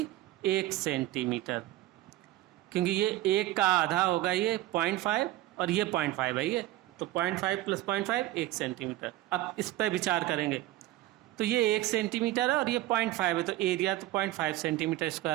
1 सेंटीमीटर, क्योंकि ये 1 का आधा होगा ये 0.5 और ये 0.5 है ये, तो 0.5 प्लस 0.5 1 सेंटीमीटर। अब इस पर विचार करेंगे तो ये 1 सेंटीमीटर है और ये 0.5 है, तो एरिया तो 0.5 सेंटीमीटर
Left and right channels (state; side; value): quieter; left; 15.9 dB